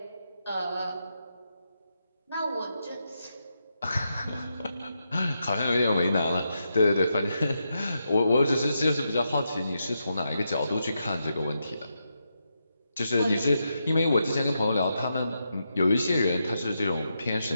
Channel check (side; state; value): both; inverted; correlation -0.85